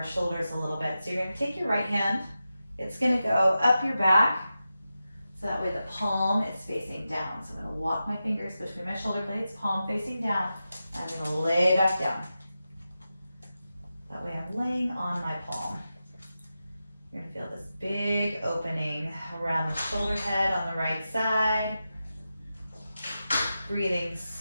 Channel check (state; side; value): inverted; both; correlation -0.91